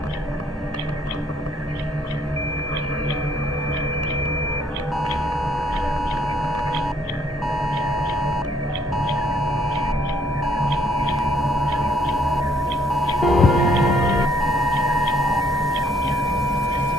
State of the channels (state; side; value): normal; both; correlation 0.67